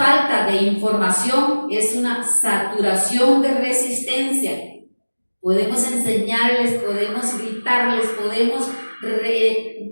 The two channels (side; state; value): both; inverted; correlation -1.00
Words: de información, es una saturación de resistencia. Podemos enseñarles, podemos gritarles, podemos